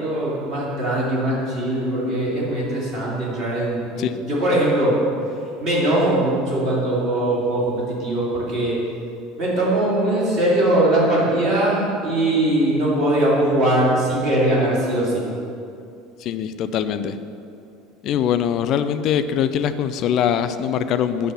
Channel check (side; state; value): both; normal; correlation 0.39